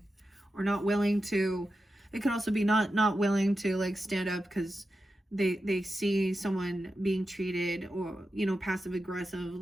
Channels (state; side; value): normal; both; correlation 0.90